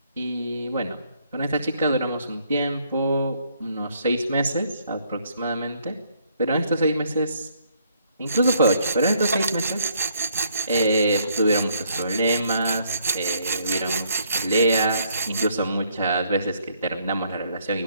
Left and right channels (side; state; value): both; inverted; correlation -0.68